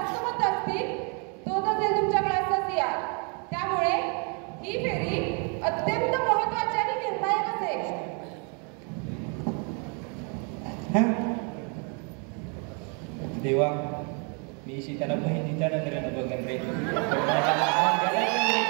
मत असतील तोच असेल तुमच्या क्लासचा CR. त्यामुळे ही फेरी अत्यंत महत्त्वाची आणि निर्णायक असेल. देवा, मी त्याला बहिणीच्या नजरेनं बघन रे.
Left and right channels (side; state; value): left; quieter; 36.8 dB